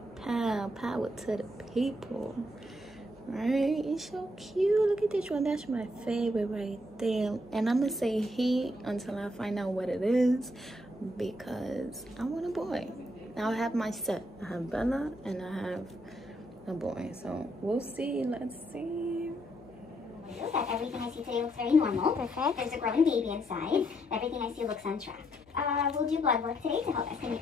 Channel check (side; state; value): left; noise; hum, 27 dB below the sound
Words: Power to the people. Right? It's so cute. Look at this one. That's my favorite right there. And I'm gonna say he until I find out what it is, because I want a boy. Now I have my set. I have Bella and I have a boy. So we'll see. Let's see. That everything I see today looks very normal. Perfect. There's a growing baby inside. Everything I see looks on track. We'll do blood work today to help estimate